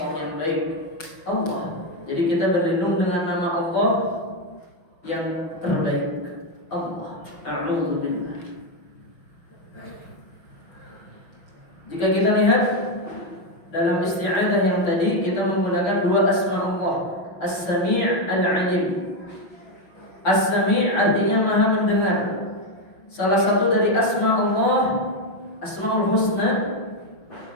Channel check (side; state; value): right; late; 5.9 ms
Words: yang baik, Allah. Jadi kita berlindung dengan nama Allah yang terbaik, Allah. A'udzubillah. Jika kita lihat dalam isti'adzah yang tadi, kita menggunakan dua asma Allah, As-Sami' Al-Alim. As-Sami' artinya maha mendengar. Salah satu dari asma Allah, Asmaul Husna,